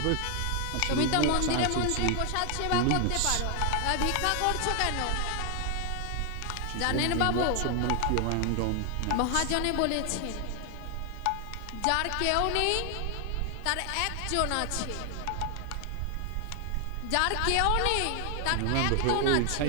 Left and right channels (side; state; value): both; different; correlation 0.00